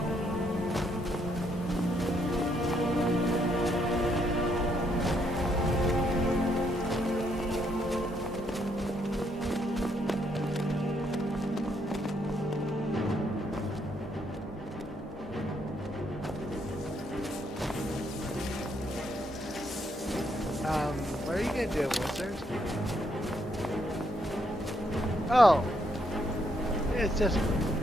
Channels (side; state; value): both; normal; correlation 0.73